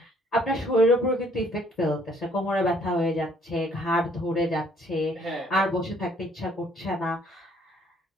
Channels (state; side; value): normal; both; correlation 0.63